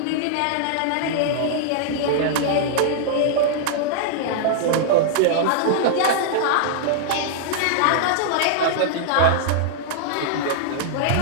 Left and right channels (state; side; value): different; both; correlation -0.01